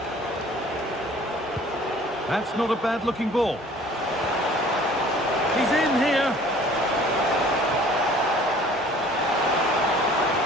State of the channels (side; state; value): both; normal; correlation 0.51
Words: That's not a bad-looking ball. He's in here.